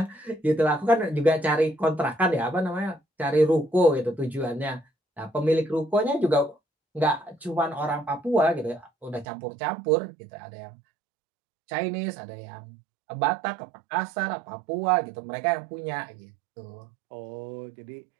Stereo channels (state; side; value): drops out; left; at 9.2 s